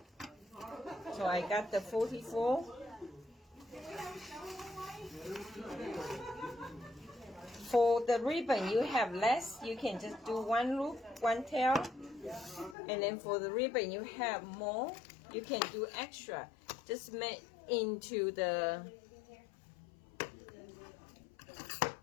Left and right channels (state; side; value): drops out; right; at 12.8 s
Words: So I got the 44. For the ribbon, you have less, you can just do 1 loop, 1 tail. And then for the ribbon, you have more, you can do extra. Just make into the,